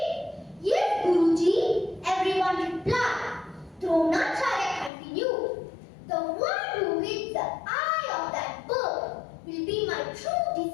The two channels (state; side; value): drops out; right; at 4.9 s